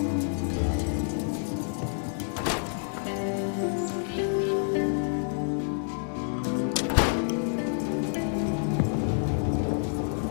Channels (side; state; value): right; silent; 59 dB below the other